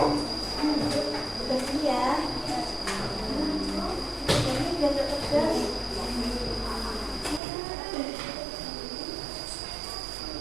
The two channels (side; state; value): left; drops out; at 7.4 s